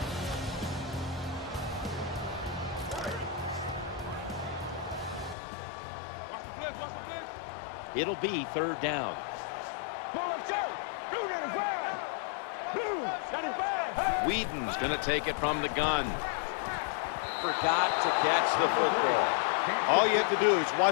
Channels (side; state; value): right; drops out; at 5.4 s